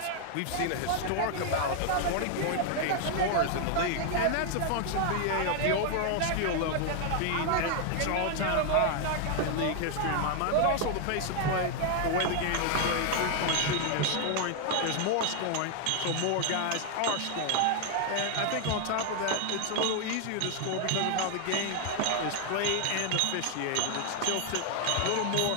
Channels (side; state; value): both; different; correlation 0.00